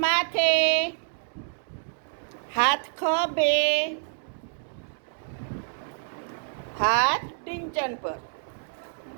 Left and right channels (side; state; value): left; silent; digital silence